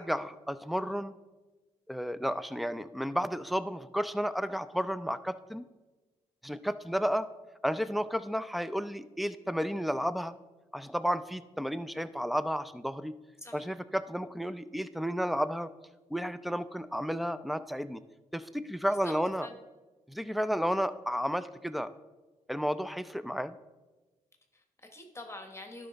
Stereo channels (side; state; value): both; normal; correlation 0.96